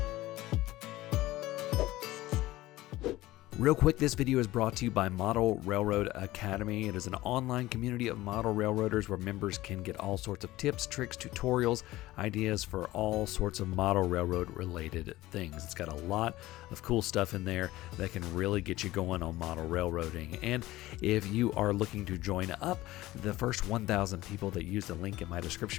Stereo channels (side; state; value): right; quieter; 17.1 dB